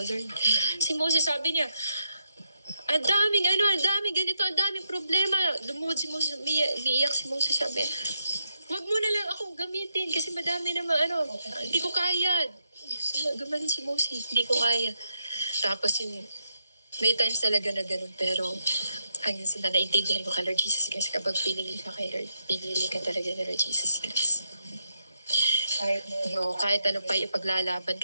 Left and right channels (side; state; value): both; inverted; correlation -0.82